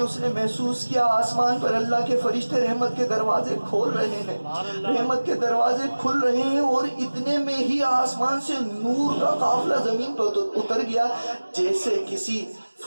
اس نے محسوس کیا آسمان پر اللہ کے فرشتے رحمت کے دروازے کھول رہے ہیں، رحمت کے دروازے کھل رہے ہیں، اور اتنے میں ہی آسمان سے نور کا قافلہ زمین پر اتر گیا جیسے کسی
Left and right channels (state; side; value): inverted; both; correlation -1.00